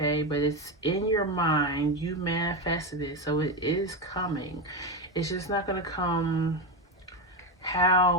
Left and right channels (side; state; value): both; normal; correlation 0.13